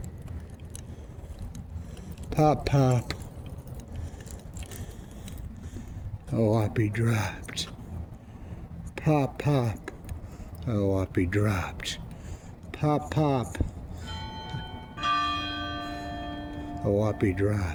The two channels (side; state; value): both; identical; correlation 1.00